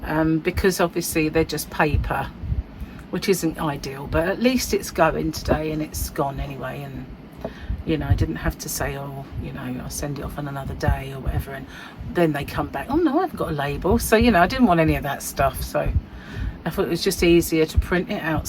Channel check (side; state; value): both; identical; correlation 1.00